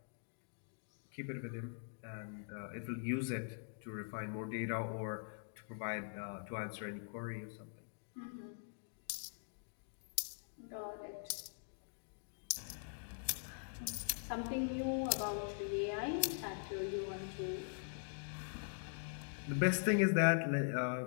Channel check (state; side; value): silent; right; digital silence